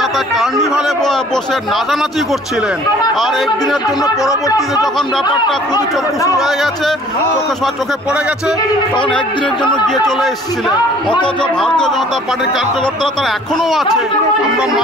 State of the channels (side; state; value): both; normal; correlation 0.53